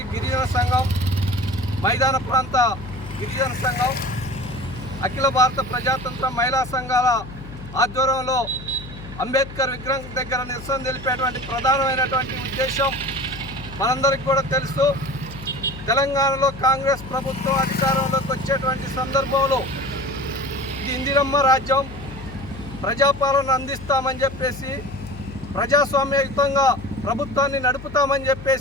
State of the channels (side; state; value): left; noise; hum, 14 dB below the sound